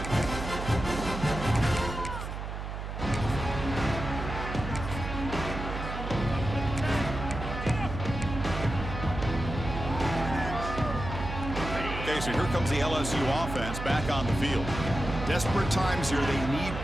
So here comes the LSU offense back on the field. Desperate times here. They need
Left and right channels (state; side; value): noise; right; hum, 6 dB below the sound